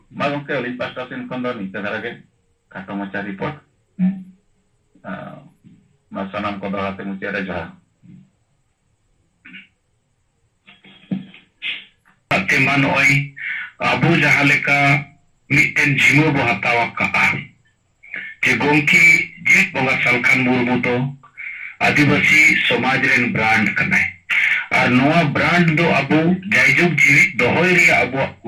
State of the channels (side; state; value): both; identical; correlation 1.00